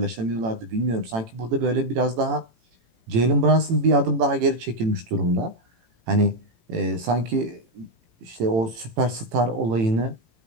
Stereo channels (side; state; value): left; late; 18 ms